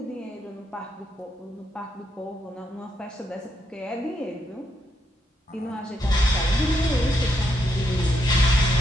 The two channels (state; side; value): normal; both; correlation 0.78